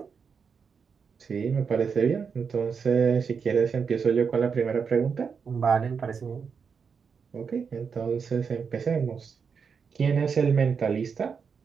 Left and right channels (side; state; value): left; quieter; 6.0 dB